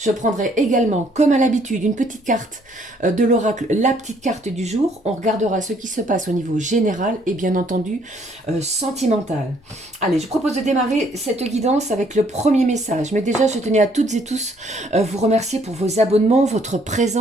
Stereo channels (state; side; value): normal; both; correlation 0.65